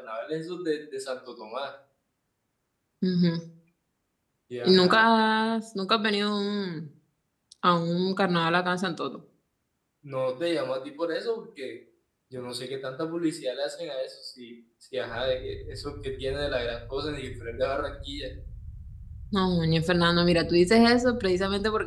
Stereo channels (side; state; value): both; identical; correlation 1.00